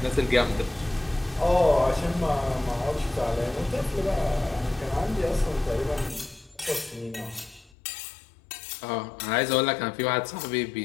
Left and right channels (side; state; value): right; drops out; at 7.7 s